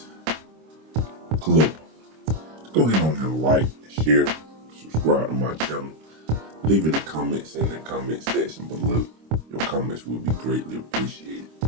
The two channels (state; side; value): late; left; 26 ms